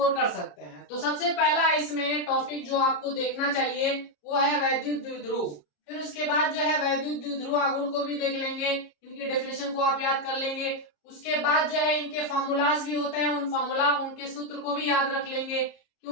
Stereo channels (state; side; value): late; right; 33 ms